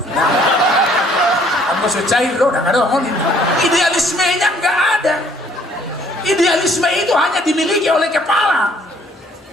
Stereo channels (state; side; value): normal; both; correlation 0.61